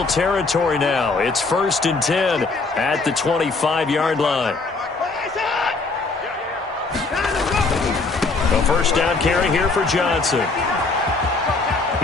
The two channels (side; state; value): right; quieter; 3.8 dB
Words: territory now. It's 1st and 10 at the 25-yard line. A 1st down carry here for Johnson.